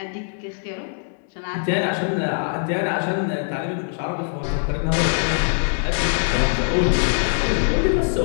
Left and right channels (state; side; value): silent; right; digital silence